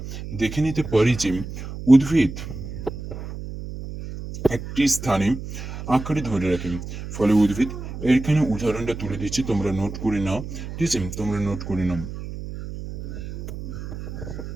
দেখে নিতে পারি যে উদ্ভিদ একটি স্থানে আঁকড়ে ধরে রাখে, ফলে উদ্ভিদ, এখানে উদাহরণটা তুলে দিচ্ছি, তোমরা নোট করে নাও। ঠিক আছে, তোমরা নোট করে নাও।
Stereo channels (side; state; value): right; noise; hum, 9 dB below the sound